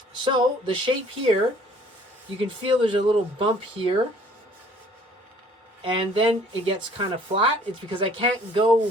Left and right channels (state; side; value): normal; both; correlation 0.56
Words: So the shape here, you can feel there's a little bump here, and then it gets kind of flat. It's because I can't